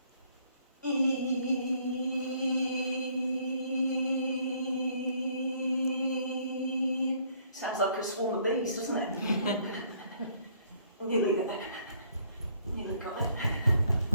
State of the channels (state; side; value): inverted; both; correlation -0.65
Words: Sounds like a swarm of bees, doesn't it? Nearly there. Nearly got it.